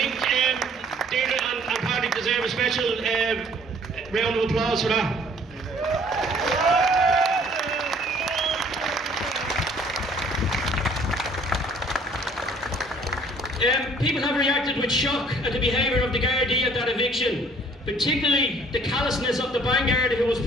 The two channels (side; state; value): both; normal; correlation 0.57